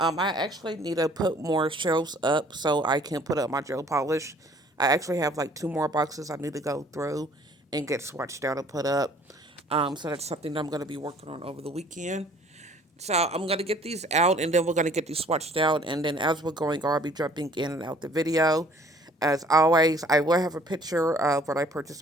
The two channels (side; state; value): both; normal; correlation 0.56